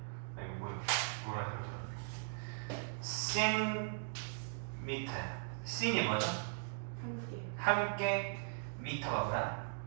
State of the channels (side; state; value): left; silent; digital silence